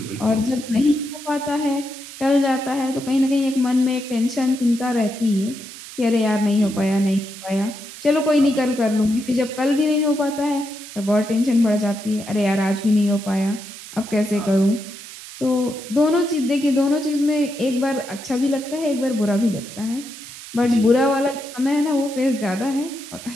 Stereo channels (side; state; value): right; noise; hiss, 14 dB below the sound